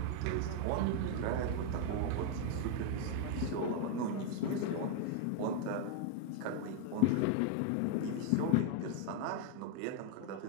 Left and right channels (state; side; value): different; both; correlation 0.00